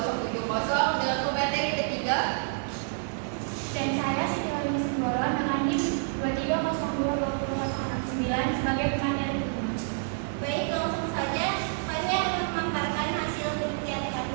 dengan pemateri ketiga. Dan saya Siti Lagi Simbolon dengan NIM 23022069 sebagai pemateri kedua. Baik, langsung saja kami akan memaparkan hasil penelitian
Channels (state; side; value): silent; left; digital silence